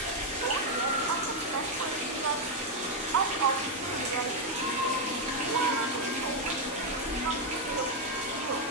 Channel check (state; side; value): normal; both; correlation 0.02